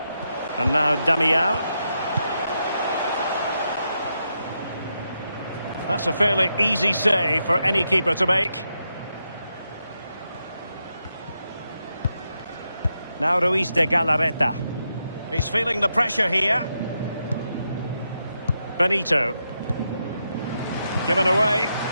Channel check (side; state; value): both; inverted; correlation -0.84